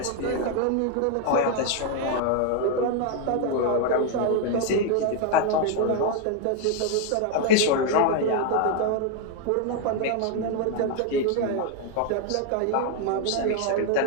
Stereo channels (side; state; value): both; different; correlation 0.00